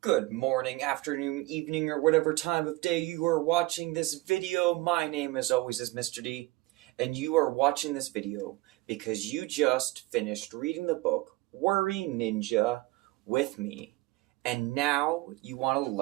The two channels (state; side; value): quieter; left; 20.0 dB